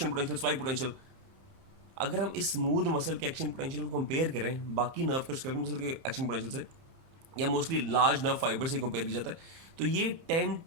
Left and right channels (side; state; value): left; late; 30 ms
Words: potential, spike potential, अगर हम इस स्मूथ मसल के एक्शन पोटेंशियल को कंपेयर करें बाकी नर्व के स्केलेटल मसल के एक्शन पोटेंशियल से, या मोस्टली लार्ज नर्व फाइबर से कंपेयर किया जाता है, तो ये 10